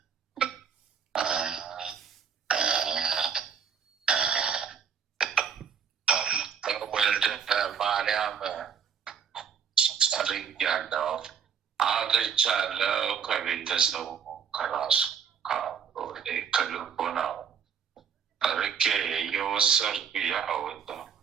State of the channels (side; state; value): left; quieter; 7.1 dB